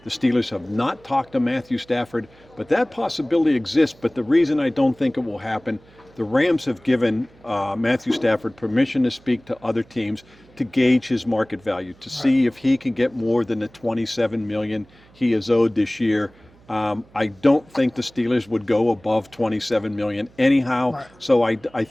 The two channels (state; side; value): noise; right; hum, 28 dB below the sound